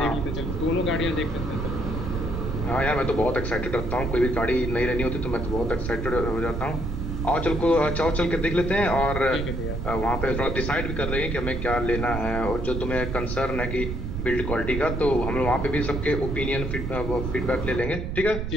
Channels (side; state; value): right; noise; rumble, 4 dB below the sound